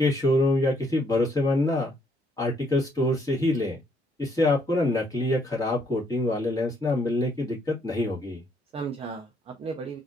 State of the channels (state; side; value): normal; both; correlation 0.70